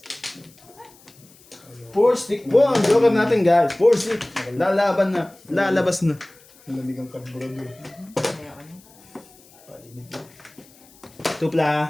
4 stick. Wow, ang joker natin guys. 4 stick. Lalaban na. Lalabas na. Nalamig ang karburado eh. Kaya ano? Painit eh.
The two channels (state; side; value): noise; left; hiss, 26 dB below the sound